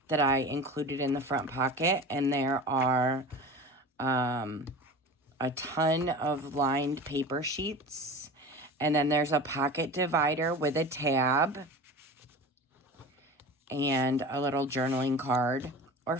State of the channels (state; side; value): normal; both; correlation 0.34